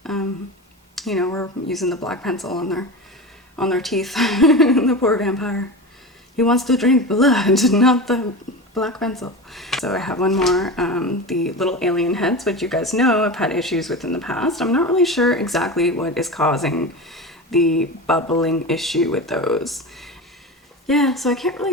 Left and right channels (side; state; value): both; normal; correlation 0.26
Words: you know, we're using the black pencil on their teeth. The poor vampire. He wants to drink blood, not the black pencil. So I have one more, the little alien heads, which you guys know I've had issues with in the past. I'm not really sure exactly what is causing the bubbling issue with those. Yeah, so I can't